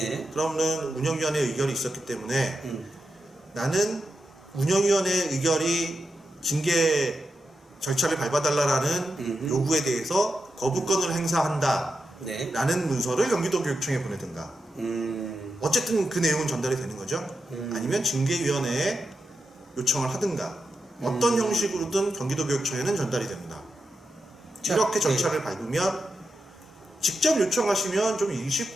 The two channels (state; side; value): normal; both; correlation 0.88